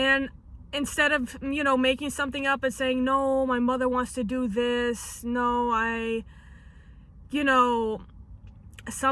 instead of, you know, making something up and saying, no, my mother wants to do this. No, you know,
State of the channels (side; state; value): both; identical; correlation 1.00